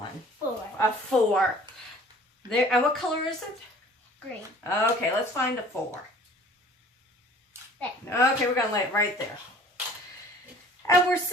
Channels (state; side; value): normal; both; correlation 0.50